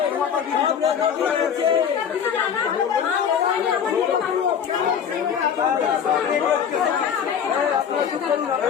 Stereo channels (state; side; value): quieter; right; 7.9 dB